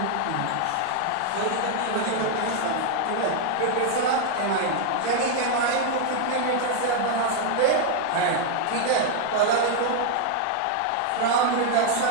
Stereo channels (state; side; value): different; both; correlation 0.00